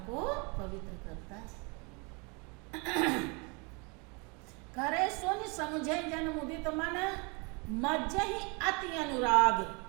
को पवित्र करता है। करे सुन समझे जन मुदित मन, मज्जहि अति अनुराग।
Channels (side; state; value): left; quieter; 31.2 dB